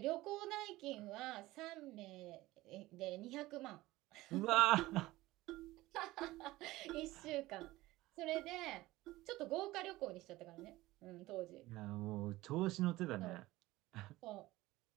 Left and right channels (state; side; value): quieter; left; 18.2 dB